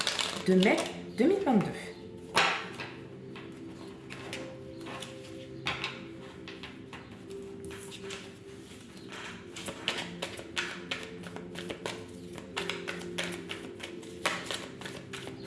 de mai 2022.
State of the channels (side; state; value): both; identical; correlation 1.00